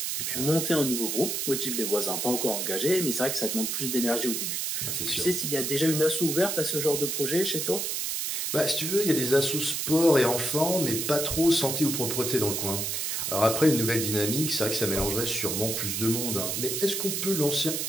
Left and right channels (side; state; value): right; noise; hiss, 1 dB below the sound